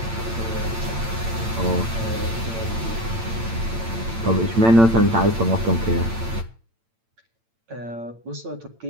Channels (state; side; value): late; left; 8.9 ms